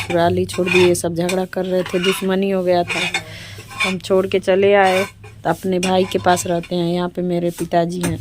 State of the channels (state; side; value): identical; both; correlation 1.00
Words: ही छोड़ दिए। सब झगड़ा कर रहे थे, दुश्मनी हो गया था, हम छोड़ के चले आए। तो अपने भाई के पास रहते हैं। यहाँ पे मेरे पिताजी हैं,